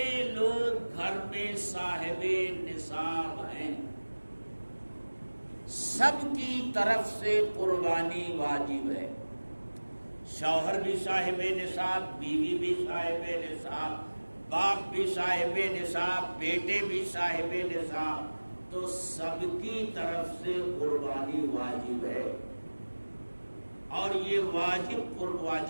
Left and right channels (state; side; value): inverted; both; correlation -1.00